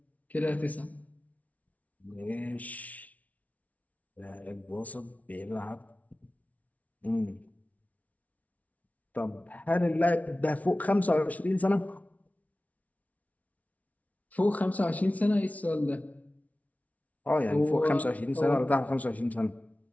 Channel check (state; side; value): late; right; 0.070 ms